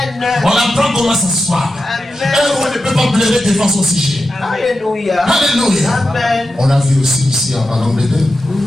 On apprend comment s'asseoir. Un roi ne peut pas pleurer devant son sujet. Alléluia. Alléluia. Amen. On a vu aussi ici en Angleterre,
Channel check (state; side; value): normal; both; correlation 0.90